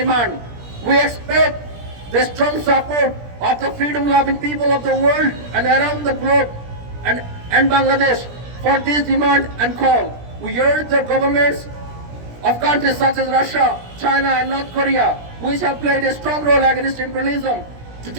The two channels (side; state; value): left; late; 17 ms